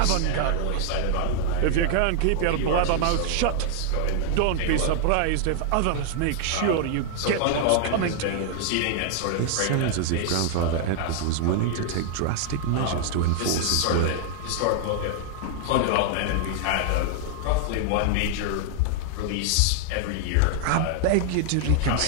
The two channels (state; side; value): different; both; correlation 0.00